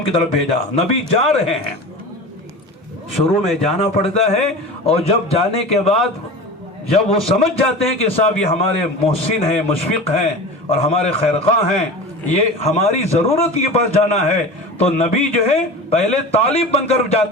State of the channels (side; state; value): both; normal; correlation 0.32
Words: کی طرف بھیجا. نبی جا رہے ہیں, شروع میں جانا پڑتا ہے, اور جب جانے کے بعد جب وہ سمجھ جاتے ہیں کہ صاحب یہ ہمارے محسن ہیں, مشفق ہیں اور ہمارے خیرخواہ ہیں, یہ ہماری ضرورت کے پاس جانا ہے, تو نبی جو ہے پہلے طالب بن کر